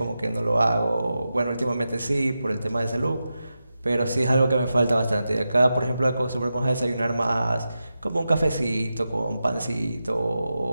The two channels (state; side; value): inverted; both; correlation -0.90